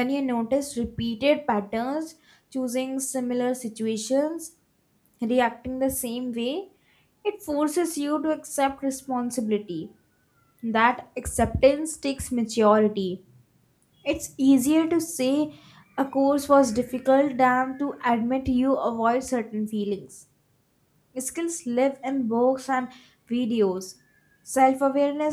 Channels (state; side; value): identical; both; correlation 1.00